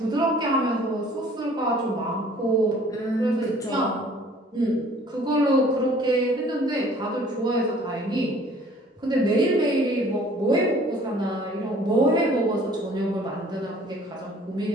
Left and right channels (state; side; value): normal; both; correlation 0.53